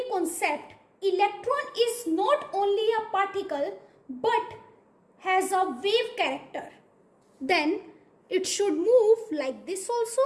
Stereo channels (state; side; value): identical; both; correlation 1.00